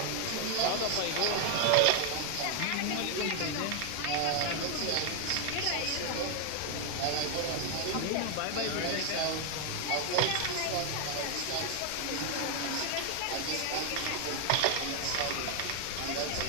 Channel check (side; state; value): both; different; correlation 0.00